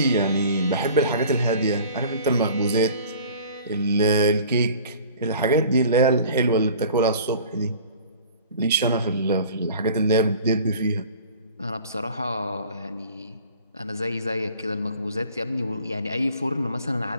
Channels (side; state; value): both; inverted; correlation -0.46